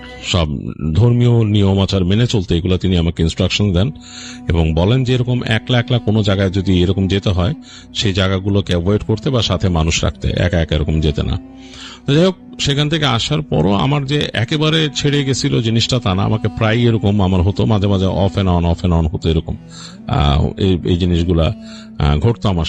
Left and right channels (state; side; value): identical; both; correlation 1.00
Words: সব ধর্মীয় নিয়ম আচার মেনে চলতে, এগুলো তিনি আমাকে ইনস্ট্রাকশন দেন, এবং বলেন যে এরকম একলা একলা কোনো জায়গায় যদি এরকম যেতে হয়, সেই জায়গাগুলোকে অ্যাভয়েড করতে বা সাথে মানুষ রাখতে, একা একা এরকম যেতে না। যাই হোক, সেখান থেকে আসার পরও আমার যে একেবারে ছেড়ে গেছিল জিনিসটা তা না, আমাকে প্রায় এরকম আমার হতো, মাঝে মাঝে অফ এন্ড অন হতো, এরকম এই জিনিসগুলা ঘটতো